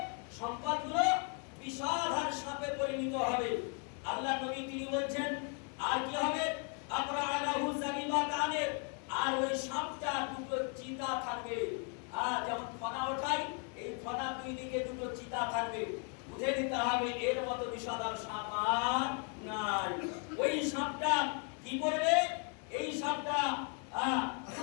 সম্পদগুলো বিষাধার সাপে পরিণত হবে। আল্লাহ নবী তিনি বলছেন, আর কি হবে? আবরাআহু যাবিবাতানে, আর ওই সাপটা দুটো চিতা থাকবে। আর যেমন ফনা ওঠাই, এই ফনা দুই দিকে দুটো চিতা থাকবে। বুঝে নিতে হবে এর মতো বিষাদার সাপ আর নাই। ওই সাপটা কি করবে? এই সাপটা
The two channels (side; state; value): right; quieter; 39.6 dB